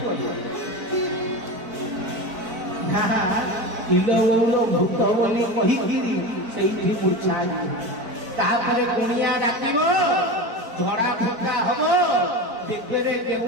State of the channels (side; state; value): left; late; 4.5 ms